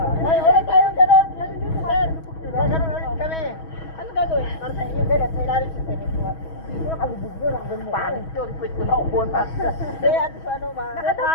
Ay, ulit tayo gano'n. Ano dito, sir? Gano'n ulit kami. Ano gagawin? Para sa inyo, ganun. Sa ilalim sa inyo. Hindi ko nakalubog yun. Ang ganun mo. Pangit yun. Pwede ko na upunan. Kaya, ano,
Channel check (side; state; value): right; late; 6.2 ms